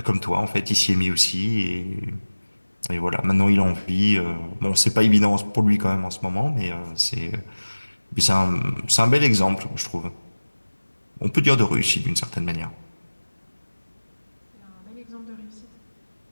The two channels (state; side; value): inverted; both; correlation -1.00